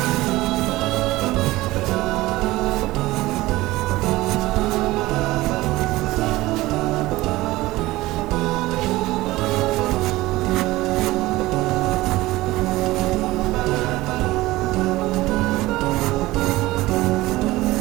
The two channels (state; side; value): quieter; left; 18.6 dB